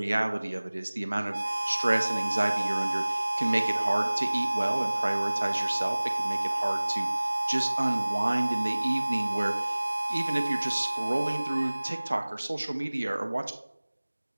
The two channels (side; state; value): both; inverted; correlation -1.00